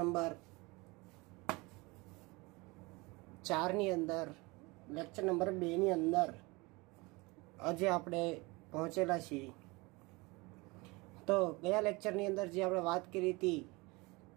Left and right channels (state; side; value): quieter; left; 24.9 dB